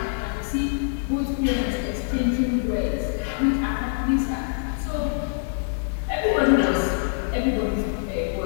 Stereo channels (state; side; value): silent; right; digital silence